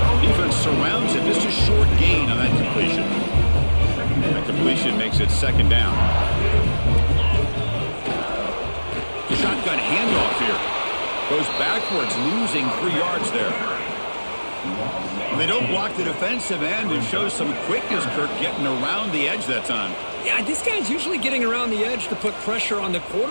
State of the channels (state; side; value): inverted; both; correlation -1.00